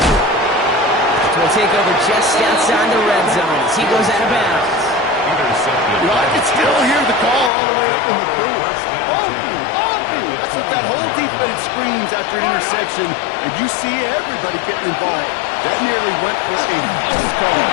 Will take over just outside the red zone as he goes out of bounds. You know, I can still hear the call all the way up in the booth. Oh, that's what that whole defense screams after an interception, and you see everybody getting involved. That nearly went for a house call.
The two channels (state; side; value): drops out; right; at 7.5 s